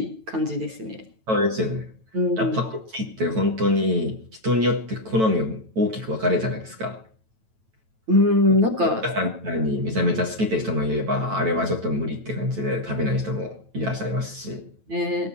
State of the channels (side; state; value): left; late; 9.1 ms